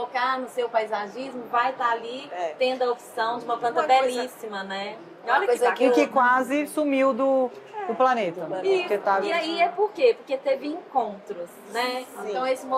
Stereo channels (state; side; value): identical; both; correlation 1.00